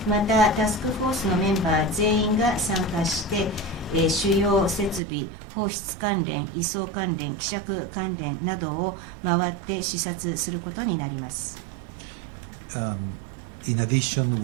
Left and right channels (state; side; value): drops out; left; at 5.0 s